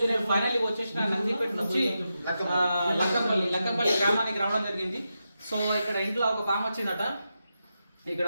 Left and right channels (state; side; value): inverted; both; correlation -0.88